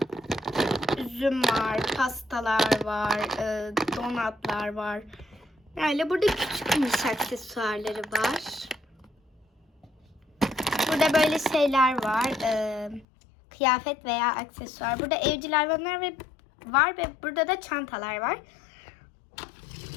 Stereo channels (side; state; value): right; drops out; at 13.1 s